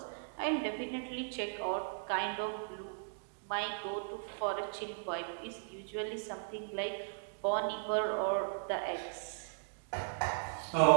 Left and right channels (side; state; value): left; silent; digital silence